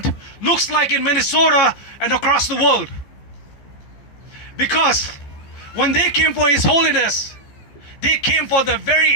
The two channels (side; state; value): right; late; 15 ms